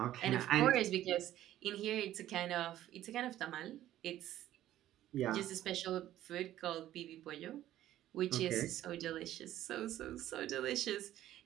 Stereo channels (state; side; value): quieter; left; 13.2 dB